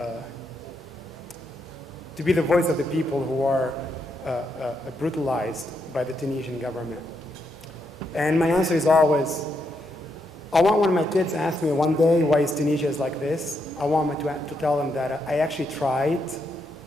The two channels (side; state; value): both; normal; correlation 0.80